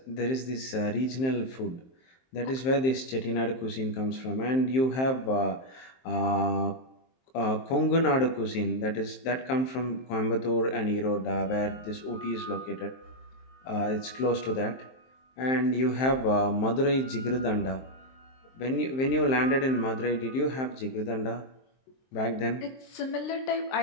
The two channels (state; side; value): late; right; 23 ms